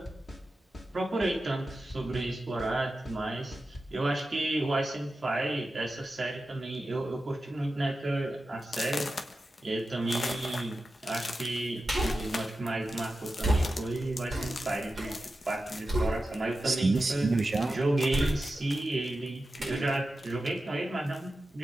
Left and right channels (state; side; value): normal; both; correlation 0.92